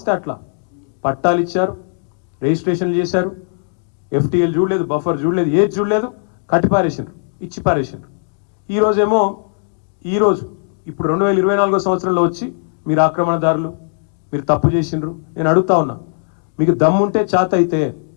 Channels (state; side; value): silent; right; digital silence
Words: అట్లా పట్టాలు ఇచ్చారు, రిజిస్ట్రేషన్లు చేశారు, FTL చూడలేదు, బఫర్ చూడలేదు, ఏది చూడలేదు, కట్టి పారేసిండ్రు, ఇచ్చి పారేసిండ్రు. ఈరోజు ఇప్పుడు 2024 సంవత్సరంలో వచ్చి మీరు ఆక్రమణదారులు, మీరు తప్పు చేసిండ్రు. నేను అడుగుతా ఉన్నా, మీకు దమ్ముంటే చేత అయితే